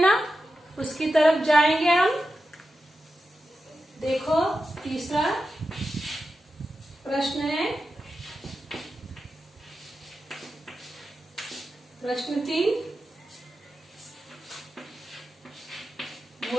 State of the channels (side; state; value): both; normal; correlation 0.90